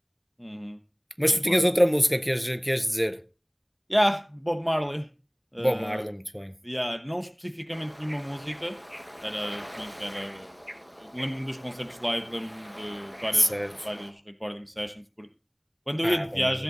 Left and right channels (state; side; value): identical; both; correlation 1.00